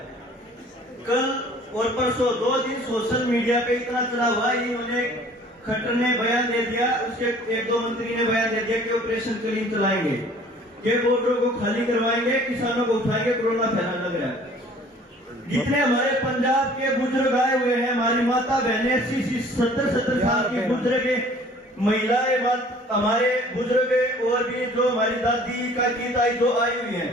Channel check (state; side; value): normal; both; correlation 0.52